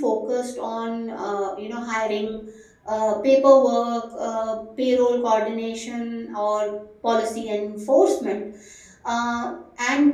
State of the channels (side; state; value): both; identical; correlation 1.00